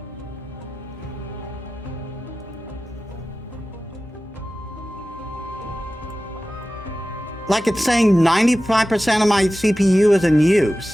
Like it's saying 95% of my CPU is in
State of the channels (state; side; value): normal; both; correlation 0.95